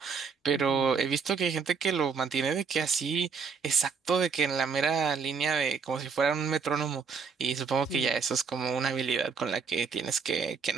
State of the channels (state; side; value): quieter; left; 5.7 dB